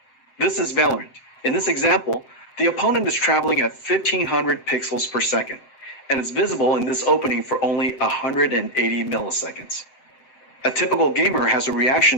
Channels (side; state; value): right; late; 7.9 ms